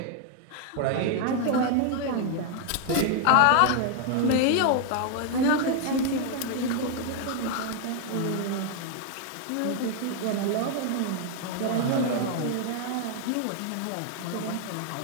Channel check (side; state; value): both; different; correlation 0.00